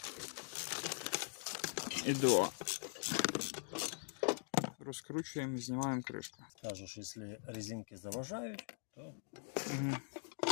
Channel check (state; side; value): silent; right; digital silence